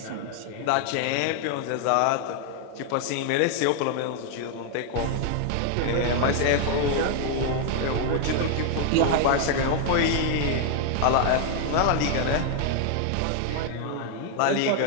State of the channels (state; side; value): different; both; correlation 0.00